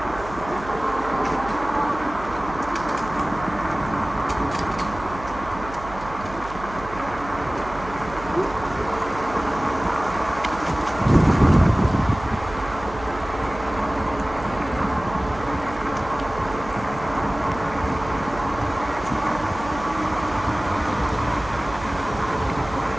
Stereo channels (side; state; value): right; noise; hum, 14 dB below the sound